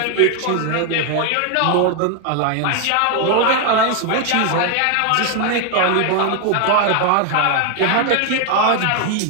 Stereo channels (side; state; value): both; different; correlation 0.01